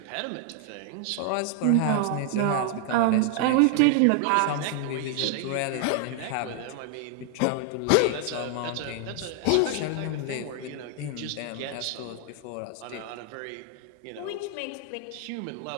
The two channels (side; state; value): both; different; correlation 0.00